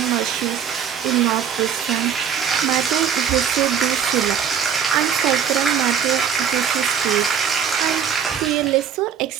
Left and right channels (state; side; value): quieter; left; 7.8 dB